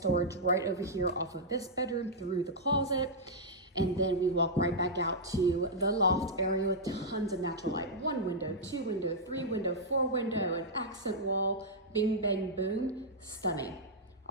right over here off of this bedroom through the closet. And then we walk right back out to the loft area with tons of natural light. 1 window, 2 window, 3 window, 4 window, an accent wall, bing, bang, boom, stunning.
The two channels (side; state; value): both; normal; correlation -0.07